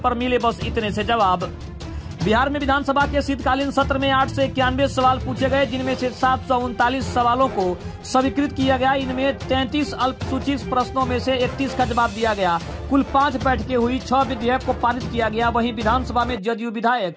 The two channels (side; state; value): both; identical; correlation 1.00